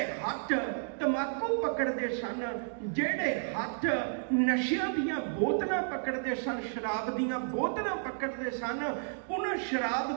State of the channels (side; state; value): left; silent; digital silence